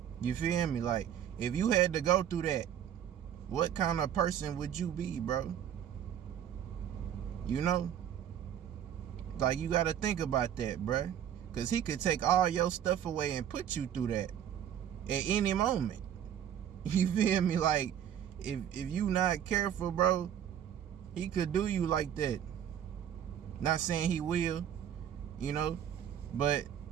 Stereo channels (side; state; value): left; quieter; 9.8 dB